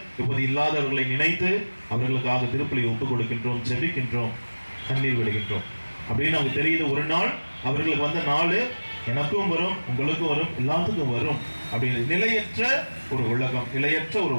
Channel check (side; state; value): both; inverted; correlation -1.00